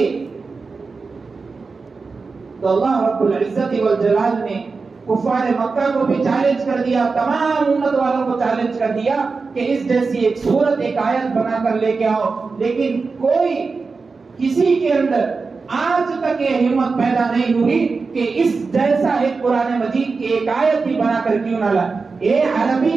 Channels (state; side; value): quieter; left; 4.4 dB